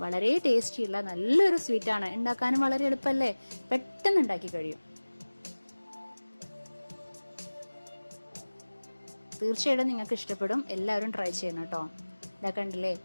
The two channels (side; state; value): both; inverted; correlation -1.00